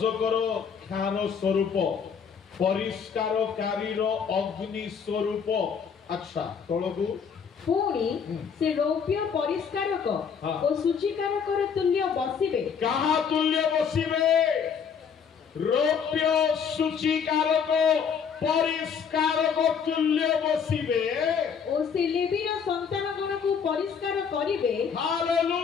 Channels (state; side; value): quieter; right; 6.7 dB